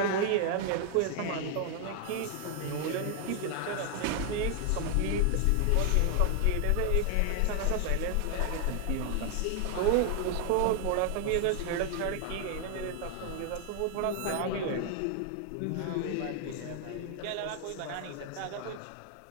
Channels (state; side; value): different; both; correlation 0.00